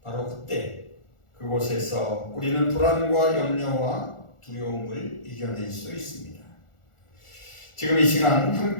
바로 그때 그곳에서 우리는 불안과 염려와 두려움을 이겨낼 수 있습니다. 지금 이 시간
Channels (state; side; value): late; right; 1.4 ms